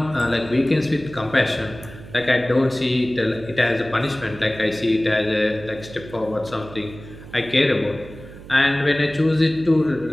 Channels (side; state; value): right; noise; hum, 16 dB below the sound